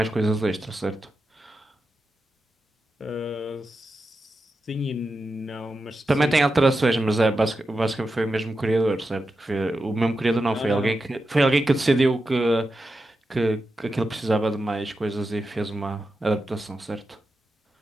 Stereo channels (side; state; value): both; normal; correlation 0.89